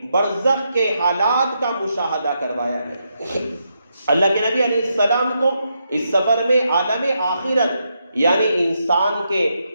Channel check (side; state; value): both; inverted; correlation -0.81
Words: برزخ کے حالات کا مشاہدہ کروایا گیا۔ اللہ کے نبی علیہ السلام کو اس سفر میں عالم آخرت یعنی انسان کے